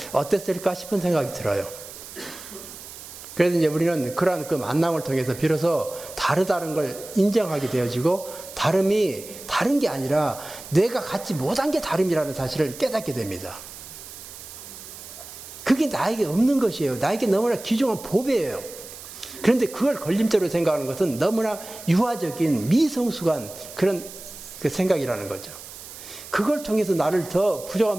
어땠을까 싶은 생각이 들어요. 그래서 이제 우리는 그러한 그 만남을 통해서 비로소 다르다는 걸 인정하게 되어지고, 다름이 다른 게 아니라 내가 갖지 못한 게 다름이라는 사실을 깨닫게 됩니다. 그게 나에게 없는 것이에요. 나에게 너무나 귀중한 보배예요. 그런데 그걸 걸림돌로 생각하는 것은 너무나 유아적인 미성숙한 그런 그 생각이라는 거죠. 그걸 통해서 나를 더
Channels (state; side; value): noise; right; hiss, 14 dB below the sound